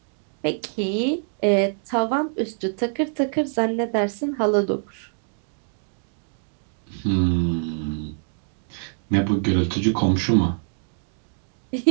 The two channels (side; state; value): left; silent; digital silence